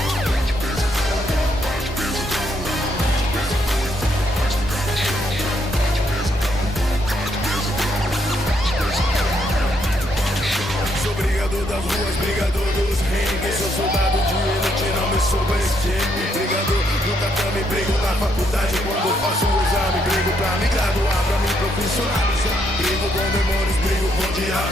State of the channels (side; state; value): both; normal; correlation 0.74